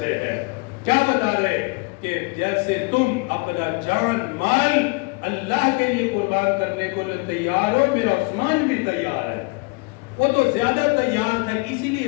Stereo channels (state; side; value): quieter; right; 29.5 dB